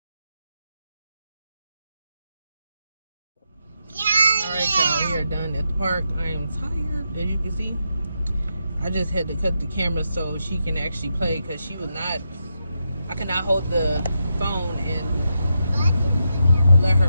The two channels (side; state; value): both; inverted; correlation -0.84